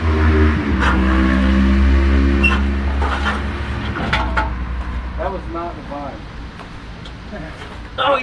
That was not the vine. Oh,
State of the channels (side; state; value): both; identical; correlation 1.00